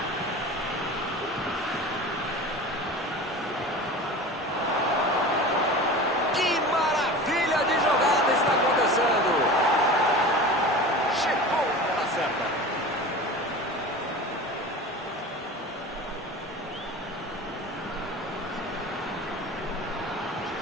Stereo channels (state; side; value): normal; both; correlation 0.34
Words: Que maravilha de jogada está acontecendo. Chegou pela certa.